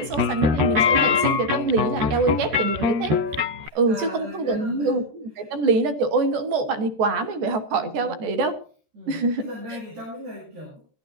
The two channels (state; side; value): late; left; 13 ms